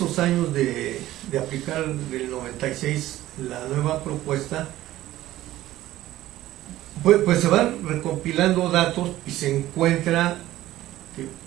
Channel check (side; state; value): left; quieter; 15.1 dB